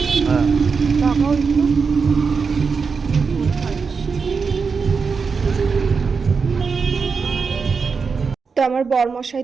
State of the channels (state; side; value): quieter; left; 5.2 dB